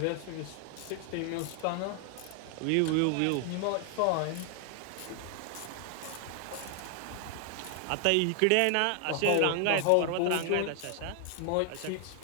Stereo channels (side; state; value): both; different; correlation 0.00